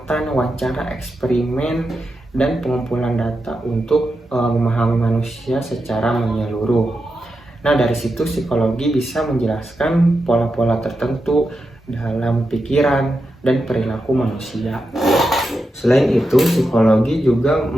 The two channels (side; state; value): both; normal; correlation 0.88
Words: wawancara, eksperimen, dan pengumpulan data untuk memahami manusia secara menyeluruh. Nah, dari situ psikologi bisa menjelaskan pola-pola tertentu dalam pikiran dan perilaku manusia. Selain itu, psikologi juga